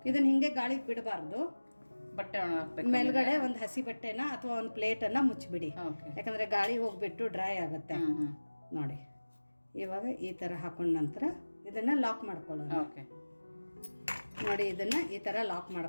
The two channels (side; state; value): both; inverted; correlation -1.00